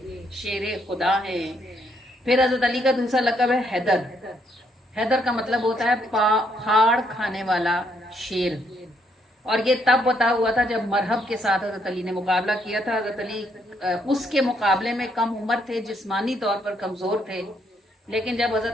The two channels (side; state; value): both; normal; correlation 0.73